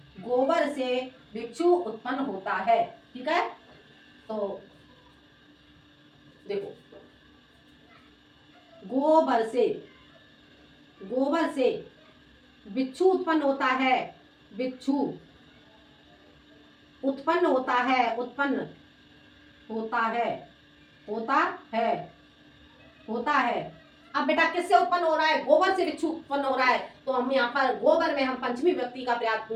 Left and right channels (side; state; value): both; identical; correlation 1.00